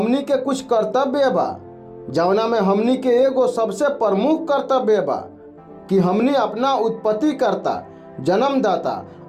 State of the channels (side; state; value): both; identical; correlation 1.00